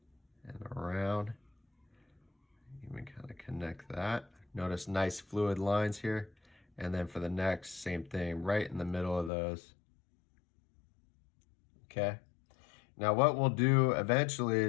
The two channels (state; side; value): drops out; right; at 9.3 s